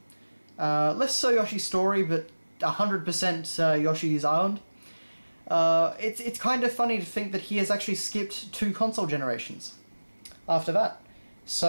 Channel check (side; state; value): both; inverted; correlation -1.00